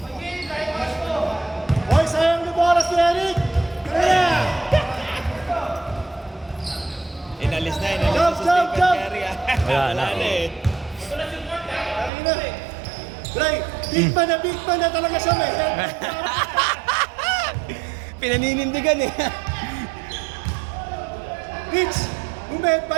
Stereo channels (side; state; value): left; drops out; at 12.1 s